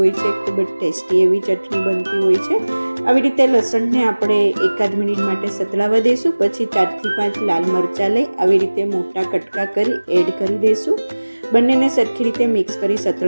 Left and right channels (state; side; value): inverted; both; correlation -1.00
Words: છે, ખૂબ જ ટેસ્ટી એવી ચટણી બનતી હોય છે। આવી રીતે લસણને આપણે 1-8 મિનિટ માટે સતળાવા દઈશું। પછી 4 થી 5 લાલ મરચાં લઈ આવી રીતે મોટા કટકા કરી એડ કરી દઈશું। બંનેને સરખી રીતે મિક્સ કરી